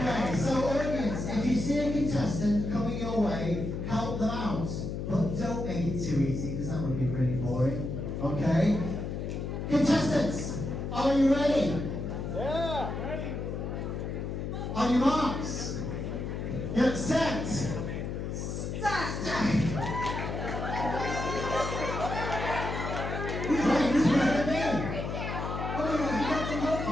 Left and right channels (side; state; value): left; noise; hum, 4 dB below the sound